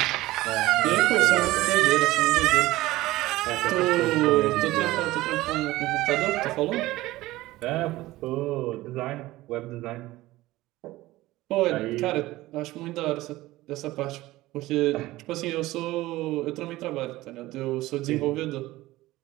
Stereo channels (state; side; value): quieter; left; 17.7 dB